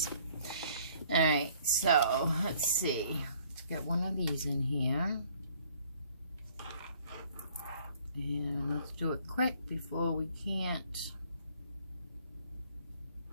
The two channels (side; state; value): both; inverted; correlation -0.59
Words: Alright, so let's see. Let's get one of these in here. And let's do it quick before we can't